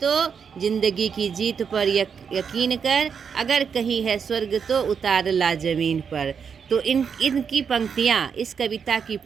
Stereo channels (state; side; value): quieter; left; 6.6 dB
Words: जिंदगी की जीत पर यकीन कर, अगर कहीं है स्वर्ग तो उतार ला जमीन पर। तो इनकी पंक्तियाँ, इस कविता की